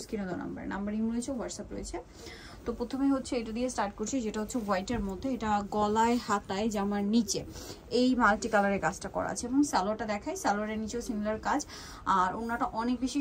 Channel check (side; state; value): both; identical; correlation 1.00